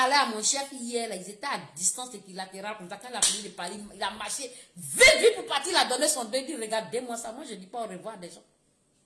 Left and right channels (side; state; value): both; identical; correlation 1.00